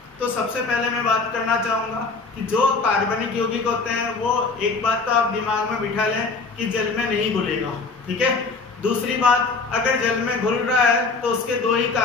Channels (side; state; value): right; quieter; 4.2 dB